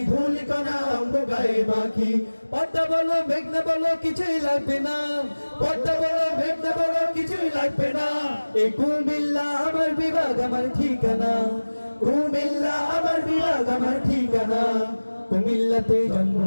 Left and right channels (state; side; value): inverted; both; correlation -1.00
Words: ধুলিকণা অঙ্গ গায়ে মাখি। পদ্মা বলো মেঘনা বলো কিছুই লাগবে না, পদ্মা বলো মেঘনা বলো কিছুই লাগবে না, এই কুমিল্লা আমার বিভাগ আমার ঠিকানা, কুমিল্লা আমার বিভাগ আমার ঠিকানা। কুমিল্লাতে জন্ম